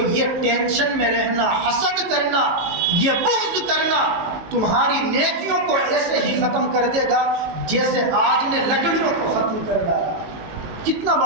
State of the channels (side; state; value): left; late; 18 ms